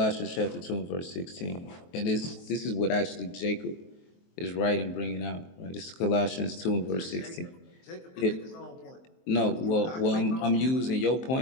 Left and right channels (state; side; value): late; right; 23 ms